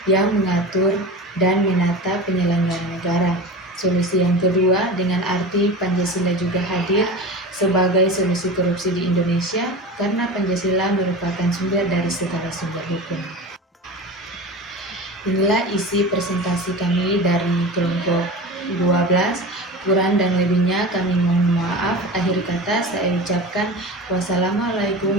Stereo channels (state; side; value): normal; both; correlation 0.30